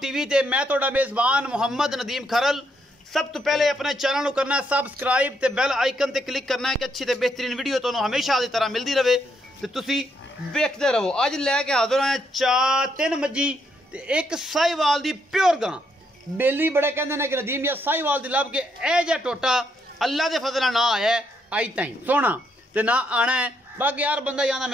ते मैं तुहाडा मेज़बान मुहम्मद नदीम खरल। सब तो पहले अपने चैनल को करना है सबसक्राइब ते बेल आइकन ते क्लिक करना है कि अच्छी ते बेहतरीन वीडियो तुहानू हमेशा की तरह मिलती रहे ते तुसी वेखदे रहो। अज लैके हाजिर हैं 3 मज्जी ते एक साहिवाल दी प्योर गां। बेली बड़े कहते हैं कि नदीम या साहिवाल दी लब के ए जा टोटा अल्लाह के फजल ना आया आई ताई सोना ते ना आना है। बाकी यार बंदा ही आना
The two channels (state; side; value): normal; both; correlation 0.75